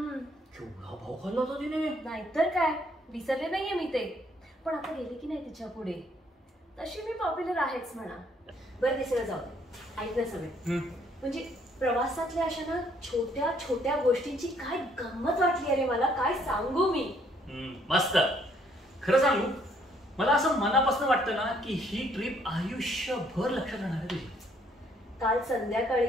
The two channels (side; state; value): both; normal; correlation 0.66